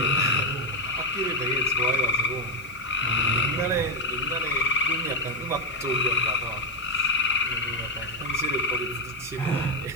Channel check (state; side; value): noise; right; hiss, 24 dB below the sound